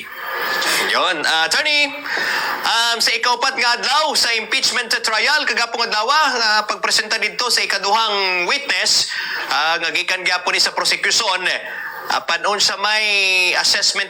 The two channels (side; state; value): both; identical; correlation 1.00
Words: Yon, attorney, sa ikaupat nga adlaw sa impeachment trial kagapong adlaw pagpresenta dito sa ikaduhang witness nga gikan gyapon ni sa prosecution. Panon sa may